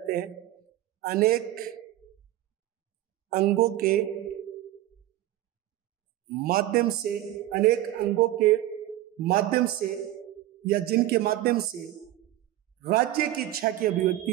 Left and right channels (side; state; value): left; quieter; 14.7 dB